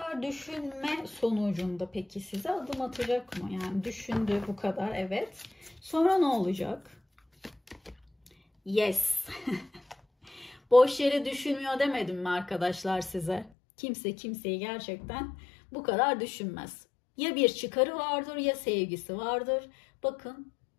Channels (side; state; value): right; drops out; at 13.5 s